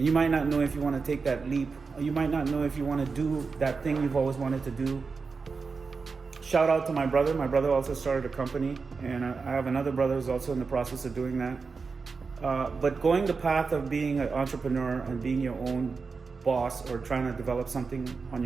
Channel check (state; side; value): quieter; left; 4.8 dB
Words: you might not know if you want to take that leap, or you might not know if you want to do that thing you've always wanted to do. Shout out to my brother. My brother also started a company, and I have another brother who's also in the process of doing that. But going the path of being an entrepreneur and being your own boss or trying to develop something on